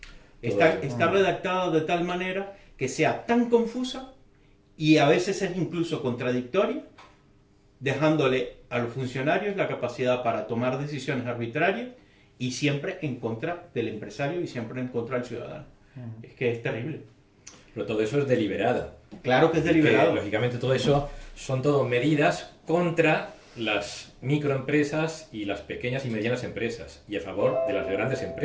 Está redactada de tal manera que sea tan confusa y a veces es incluso contradictoria, dejándole a los funcionarios la capacidad para tomar decisiones arbitrarias y siempre en contra del empresario y siempre en contra del ciudadano. Es que es terrible. Pero todo eso es deliberado. Claro que es deliberado. Que, lógicamente todo eso son todo medidas contra las microempresas y las pequeñas y medianas empresas y a favor de las grandes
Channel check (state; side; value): identical; both; correlation 1.00